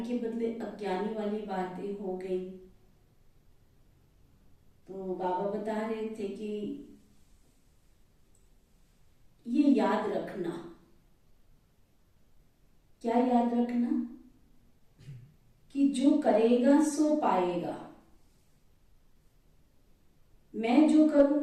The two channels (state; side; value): identical; both; correlation 1.00